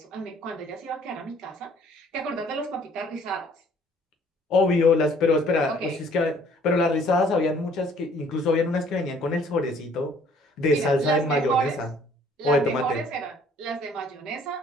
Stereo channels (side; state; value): both; normal; correlation 0.58